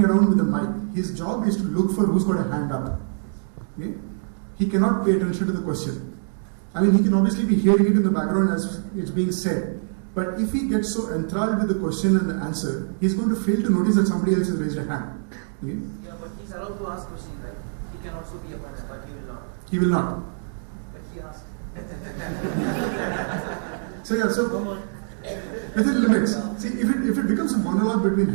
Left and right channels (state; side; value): silent; left; digital silence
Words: around with a mic. His job is to look for who's got a hand up. Okay? He cannot pay attention to the question. He can obviously be hearing it in the background as it's being said. But if he gets so enthralled with the question and the answer, he's going to fail to notice that somebody else has raised a hand. Okay? Yeah, but he's allowed to ask questions, right? He can also be a part, but he will not. He will not. But he asked. So within limits. See, if it becomes a monologue between